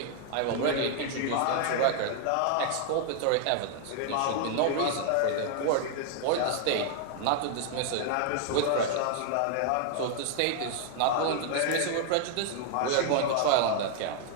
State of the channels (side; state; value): both; different; correlation 0.00